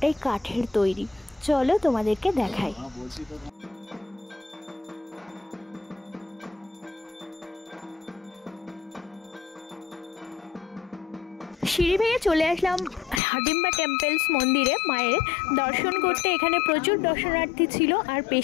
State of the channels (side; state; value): right; drops out; at 13.2 s